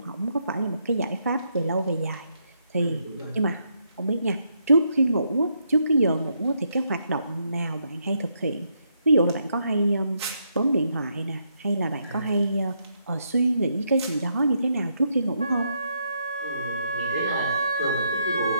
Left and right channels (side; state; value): both; inverted; correlation -0.77